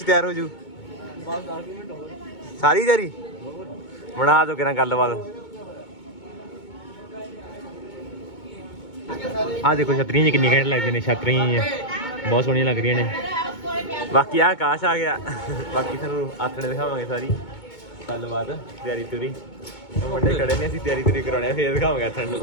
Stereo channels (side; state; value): right; late; 2.2 ms